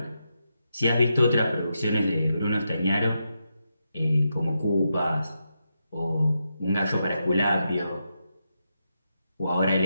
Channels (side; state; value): both; inverted; correlation -0.85